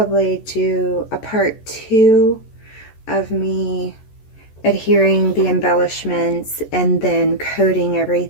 do a part two of me adhering the embellishments and then coating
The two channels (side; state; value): right; late; 14 ms